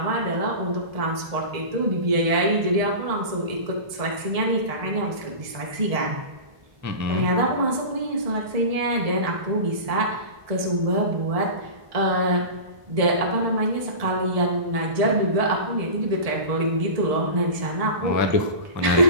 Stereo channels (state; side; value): late; left; 1.7 ms